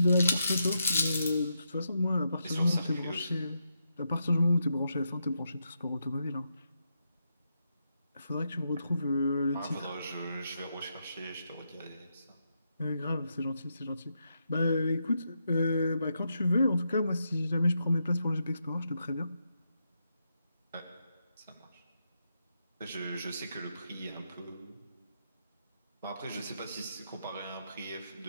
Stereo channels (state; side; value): inverted; both; correlation -0.83